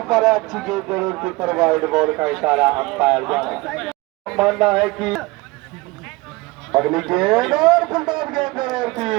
पर अच्छी गेंद जरूर थी पर वाइड बॉल का इशारा अंपायर का मानना है कि अगली गेंद और फुलटॉस गेंद जरूर थी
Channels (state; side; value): quieter; left; 22.9 dB